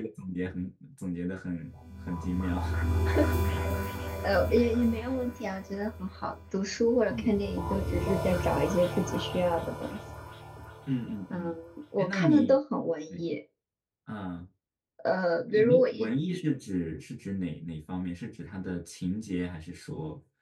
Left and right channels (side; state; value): both; identical; correlation 1.00